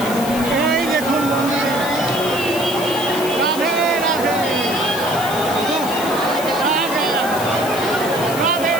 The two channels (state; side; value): noise; left; hiss, 11 dB below the sound